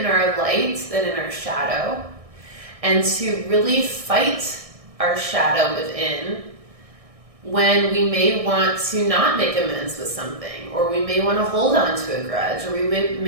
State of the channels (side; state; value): left; late; 1.6 ms